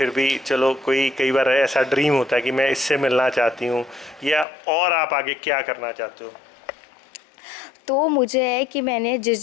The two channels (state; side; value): drops out; right; at 4.5 s